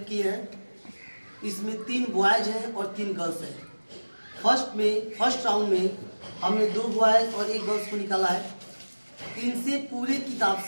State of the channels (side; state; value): both; inverted; correlation -1.00